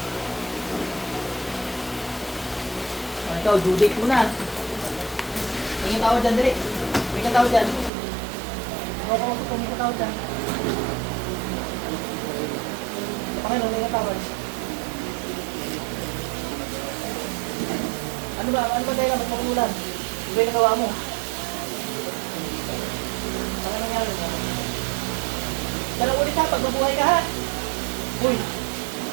Ikaw, due date mo na. Tingin tao dyan, dali. Tingin tao dyan. Tingin tao dyan. Panginoon, tingin tao dyan. Ano ba dahil ba't makulan? Ano ba yung nagawa mo? Ano nangyari mo? Dalang ulit ha, pag mabuhay ka ha. Uy!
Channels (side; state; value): left; drops out; at 7.9 s